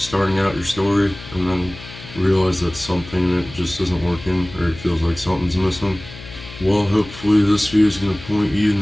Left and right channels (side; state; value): left; noise; hum, 16 dB below the sound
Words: out your story and then realize that something that just isn't working or it feels like something's missing? Well, hopefully this video is going to point you in